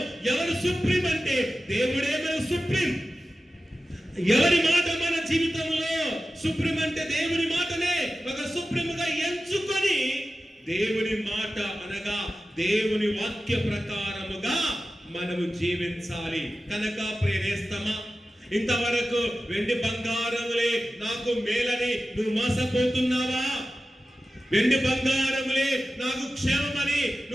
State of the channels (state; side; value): normal; both; correlation 0.94